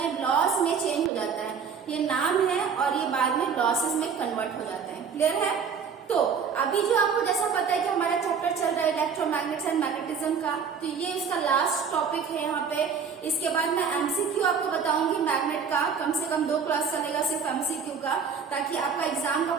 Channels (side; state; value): left; quieter; 6.3 dB